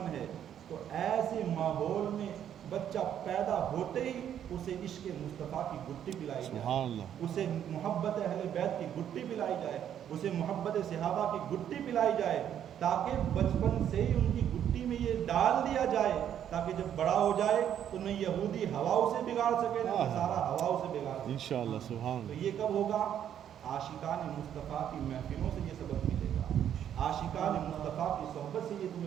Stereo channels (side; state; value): left; quieter; 9.8 dB